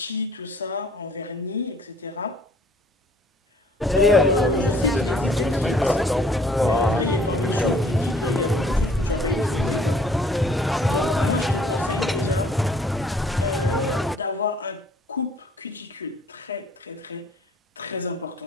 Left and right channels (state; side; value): normal; both; correlation 0.58